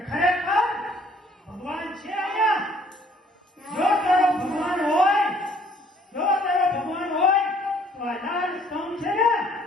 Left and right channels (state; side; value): normal; both; correlation 0.60